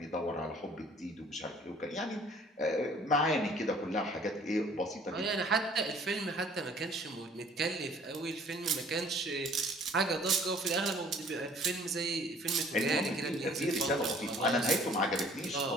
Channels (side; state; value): both; normal; correlation 0.55